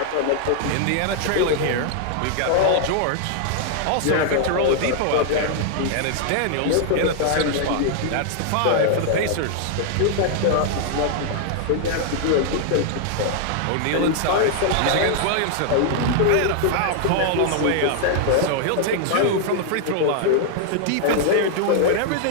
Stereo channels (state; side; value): different; both; correlation -0.01